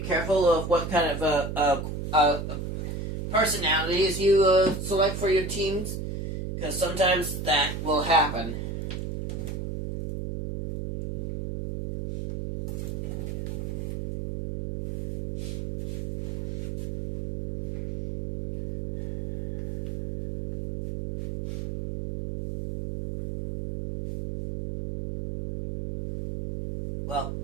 careful of what kind of personalities you select for your teams, because sometimes that will happen. Well,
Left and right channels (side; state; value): right; noise; hum, 5 dB below the sound